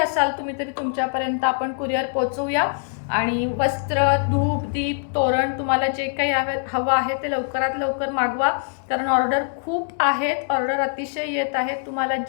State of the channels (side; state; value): right; silent; digital silence